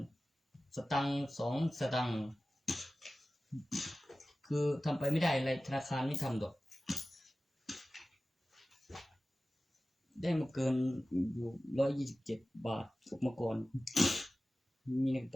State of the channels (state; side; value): normal; both; correlation 0.96